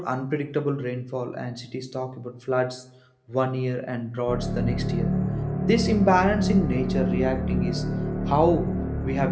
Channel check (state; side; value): identical; both; correlation 1.00